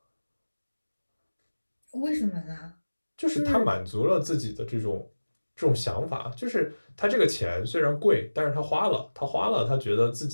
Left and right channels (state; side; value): inverted; both; correlation -1.00